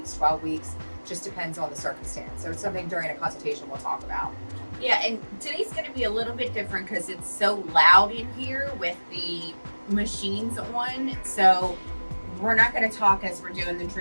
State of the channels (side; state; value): both; inverted; correlation -1.00